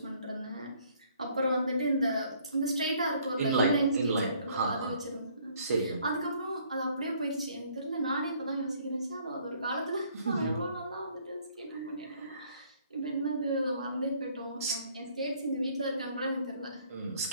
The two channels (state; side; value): inverted; both; correlation -0.62